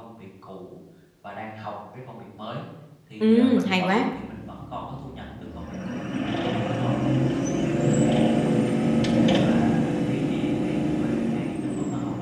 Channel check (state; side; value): identical; both; correlation 1.00